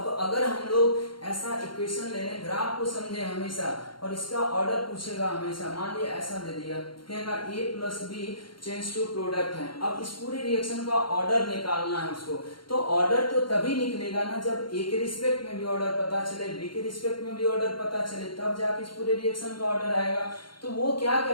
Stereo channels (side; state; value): right; late; 0.73 ms